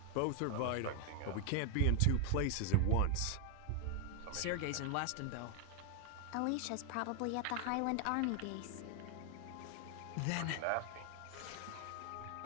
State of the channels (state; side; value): different; both; correlation 0.01